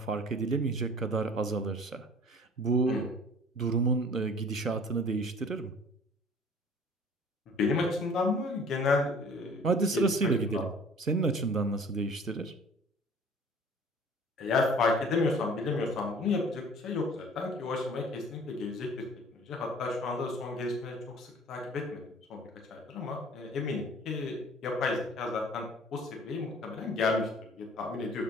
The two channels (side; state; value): both; normal; correlation 0.50